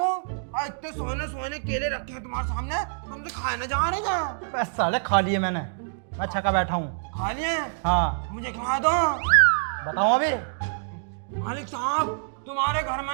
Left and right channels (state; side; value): silent; left; digital silence